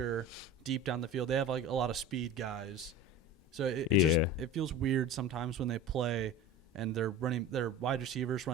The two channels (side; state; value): both; normal; correlation 0.33